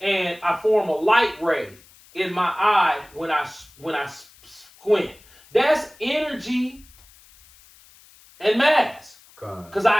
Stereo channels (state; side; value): noise; left; hiss, 26 dB below the sound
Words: and I form a light ray in my eye when I squint. That's energy and mass. Because